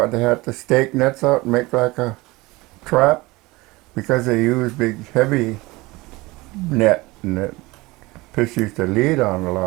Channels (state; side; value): quieter; left; 21.8 dB